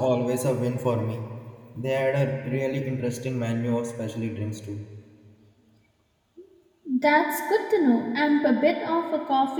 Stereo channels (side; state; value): both; identical; correlation 1.00